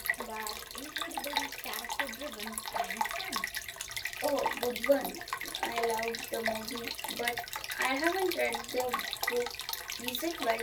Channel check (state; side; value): identical; both; correlation 1.00